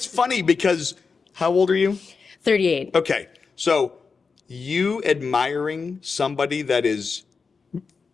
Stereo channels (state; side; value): quieter; right; 5.0 dB